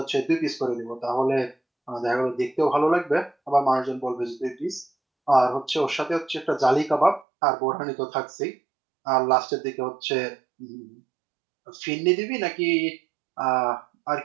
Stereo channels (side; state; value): left; drops out; at 7.2 s